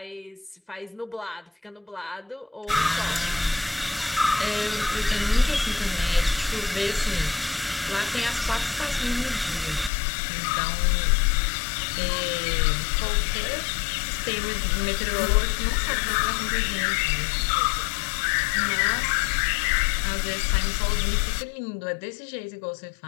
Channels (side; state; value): right; drops out; at 9.9 s